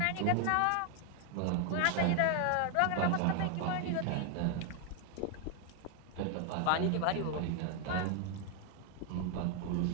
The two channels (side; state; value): both; different; correlation 0.00